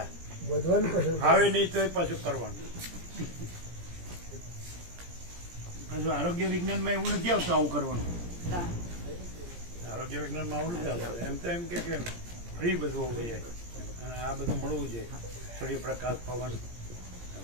વધવાનું પસંદ આવે નહીં તો પાછું કરવાનું. પાછું આરોગ્ય વિજ્ઞાનમાં એવું નથી આવતું આવું કરવાનું. આરોગ્ય વિજ્ઞાનમાં આવું નથી આવતું. એમ તો એમ કે ફ્રી બધું હોવું જોઈએ અને આ બધું મળવું જોઈએ, સૂર્યપ્રકાશ પવન.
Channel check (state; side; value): late; left; 17 ms